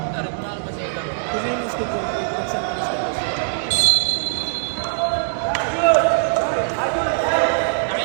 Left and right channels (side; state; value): left; silent; digital silence